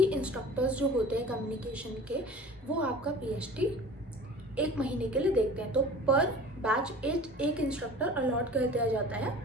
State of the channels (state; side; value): normal; both; correlation 0.41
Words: इंस्ट्रक्टर्स जो होते हैं कम्युनिकेशन के, वो आपका PHT 1 महीने के लिए देखते हैं. तो पर बैच एक इंस्ट्रक्टर अलॉट कर दिया जाता है.